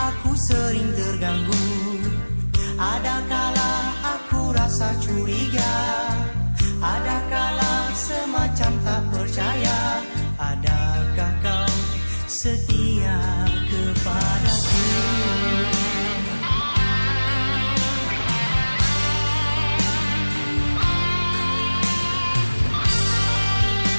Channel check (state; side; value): inverted; both; correlation -1.00